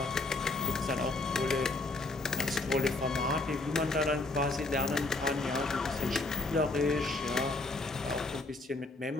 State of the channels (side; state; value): right; quieter; 3.1 dB